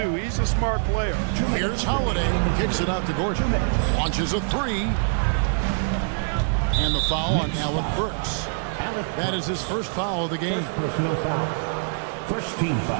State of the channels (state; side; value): silent; left; digital silence